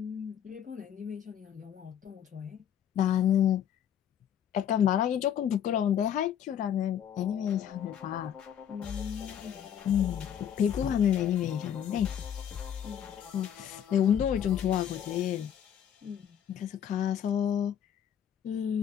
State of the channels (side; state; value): right; quieter; 9.3 dB